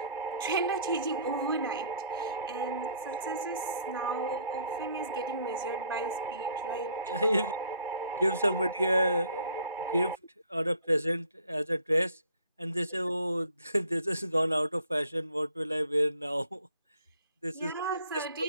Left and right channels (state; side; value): inverted; both; correlation -0.59